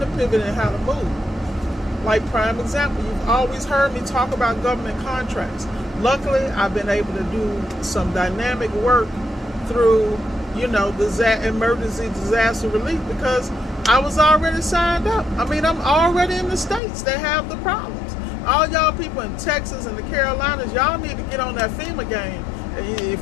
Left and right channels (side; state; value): right; drops out; at 16.8 s